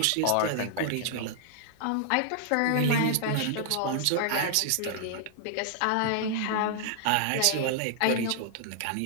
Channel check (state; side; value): different; both; correlation -0.01